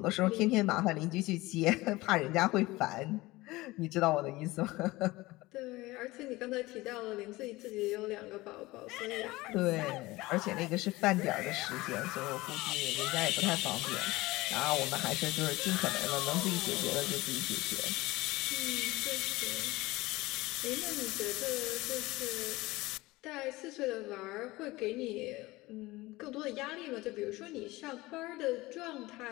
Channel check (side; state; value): right; quieter; 20.1 dB